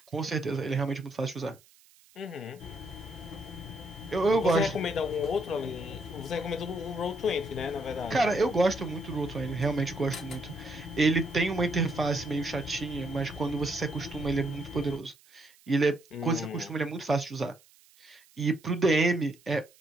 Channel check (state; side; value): noise; right; hiss, 28 dB below the sound